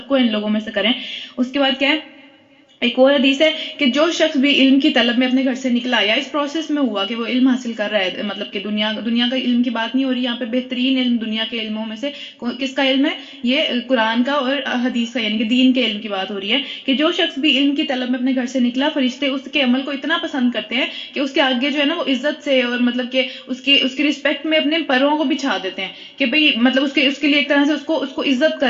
کو ان لوگوں میں سے کریں۔ اس کے بعد کیا ہے، ایک اور حدیث ہے کہ جو شخص بھی علم کی طلب میں اپنے گھر سے نکلا یا اس پروسیس میں ہوا کہ وہ علم حاصل کر رہا ہے، مطلب کہ دنیا کا علم کی بات نہیں ہو رہی یہاں پہ، بہترین علم دنیا کے علموں میں سے کس کا علم ہے، یہ قرآن کا اور حدیث کا، یعنی کہ دین کے علم کی بات ہو رہی ہے کہ جو شخص بھی علم کی طلب میں اپنے گھر سے نکلا، فرشتے اس کے عمل کو اتنا پسند کرتے ہیں کہ اس کے آگے جو ہے نا وہ عزت سے اور مطلب کہ اس کی رسپیکٹ میں اپنے پروں کو بچھا دیتے ہیں کہ بھئی مطلب اس کے لیے ایک طرح سے اس کو عزت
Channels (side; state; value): both; identical; correlation 1.00